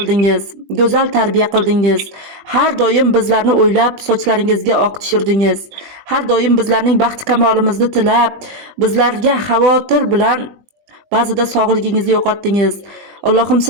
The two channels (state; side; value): late; left; 20 ms